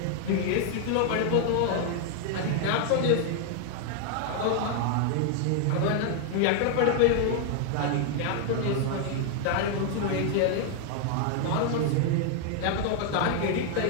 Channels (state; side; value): different; both; correlation 0.00